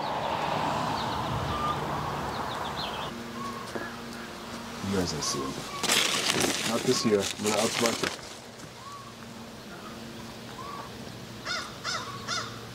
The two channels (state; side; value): identical; both; correlation 1.00